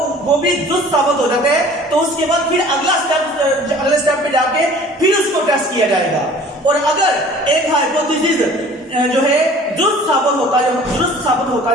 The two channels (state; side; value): normal; both; correlation 0.48